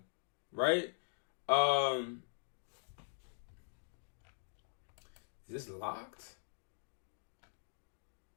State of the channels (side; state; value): right; silent; digital silence